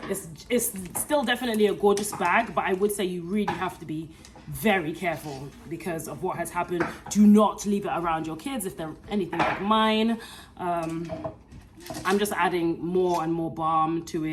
it's still definitely a gorgeous bag, but I would say you really have to be very careful because of what has happened. Do not leave it around your kids if they're anything like mine. I'm just adding more and more balm to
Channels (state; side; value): identical; both; correlation 1.00